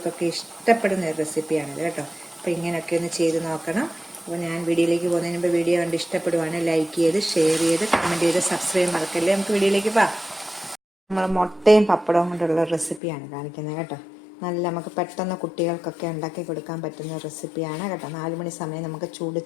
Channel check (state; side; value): drops out; right; at 13.0 s